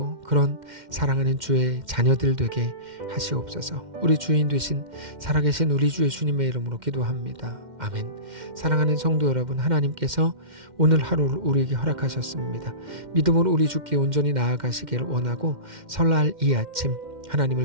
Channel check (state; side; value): late; left; 2.1 ms